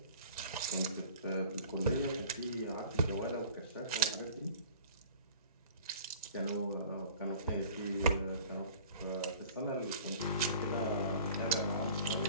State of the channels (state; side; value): inverted; both; correlation -0.47